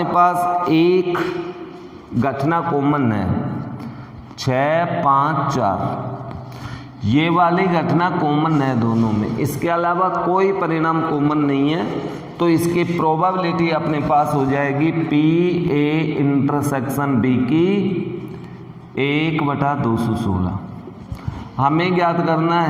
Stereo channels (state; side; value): identical; both; correlation 1.00